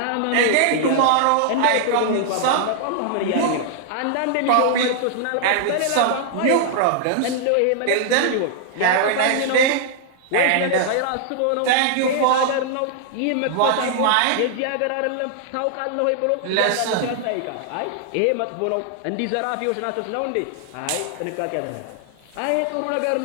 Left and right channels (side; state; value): both; different; correlation -0.01